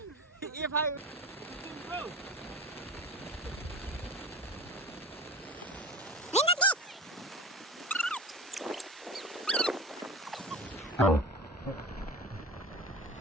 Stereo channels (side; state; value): both; normal; correlation 0.33